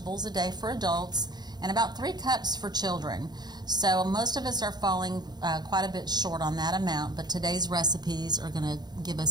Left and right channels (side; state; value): left; late; 0.20 ms